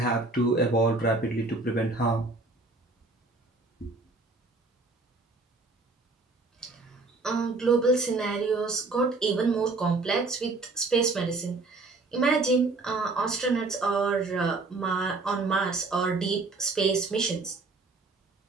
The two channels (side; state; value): left; quieter; 3.5 dB